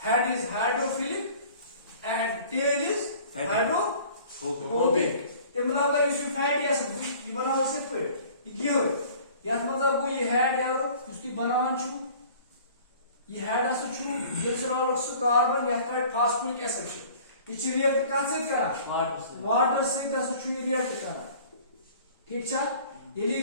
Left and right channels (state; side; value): inverted; both; correlation -0.48